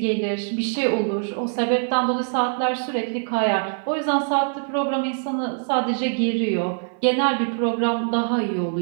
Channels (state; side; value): silent; left; 55 dB below the other